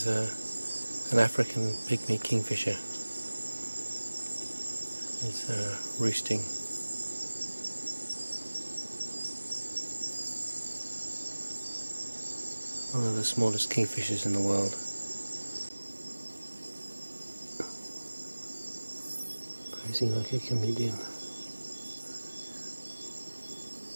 an African pygmy kingfisher. It's roosting. One of the smallest kingfishers in the world. Posing like a chameleon.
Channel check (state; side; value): inverted; both; correlation -1.00